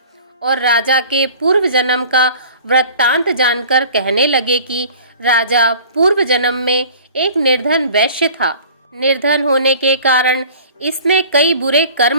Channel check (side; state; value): both; inverted; correlation -0.46